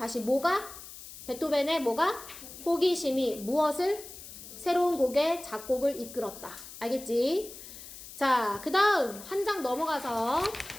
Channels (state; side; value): noise; left; hiss, 14 dB below the sound